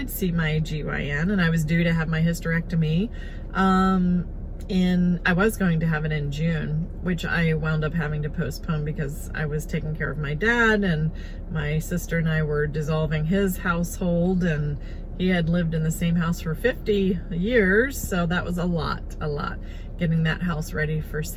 see my GYN, and I was due to have my hysterectomy. I was going to have it in June, which I wound up having to postpone because I was taking care of my dad, and my sister and I were dissolving his household, and he had lived in the same house for 50 years, so that was a lot, getting that house ready for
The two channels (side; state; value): both; identical; correlation 1.00